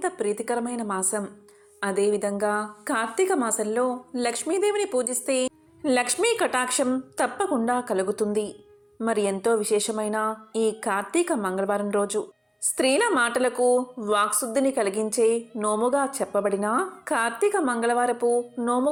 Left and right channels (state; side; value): identical; both; correlation 1.00